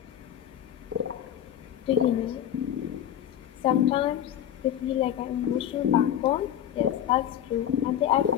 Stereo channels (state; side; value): quieter; right; 10.6 dB